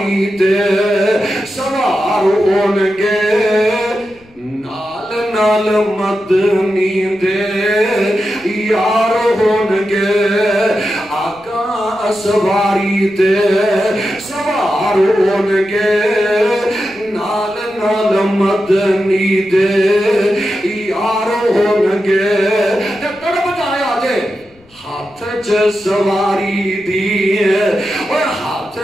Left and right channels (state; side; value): noise; left; rumble, 29 dB below the sound